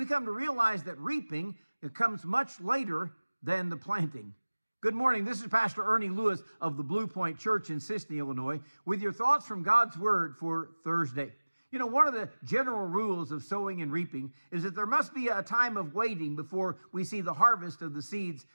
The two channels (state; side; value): inverted; both; correlation -1.00